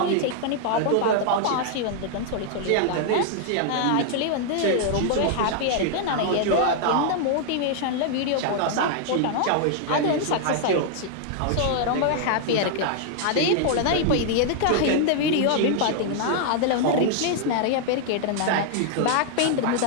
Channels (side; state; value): both; different; correlation 0.00